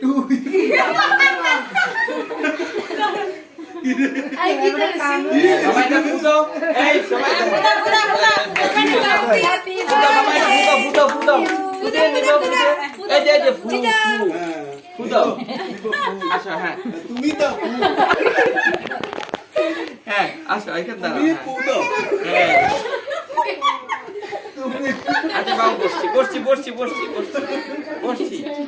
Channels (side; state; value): both; identical; correlation 1.00